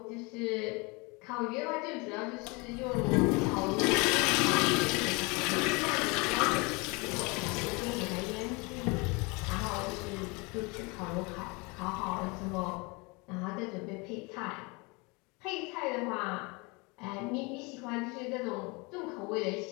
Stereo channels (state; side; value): quieter; right; 28.0 dB